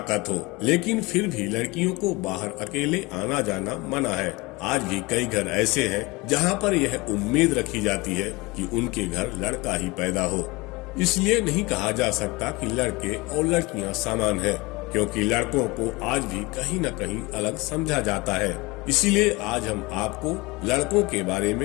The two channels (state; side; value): quieter; right; 23.8 dB